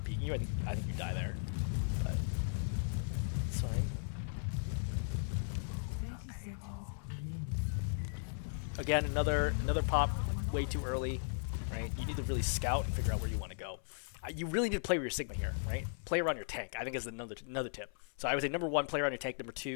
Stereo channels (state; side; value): silent; right; 53 dB below the other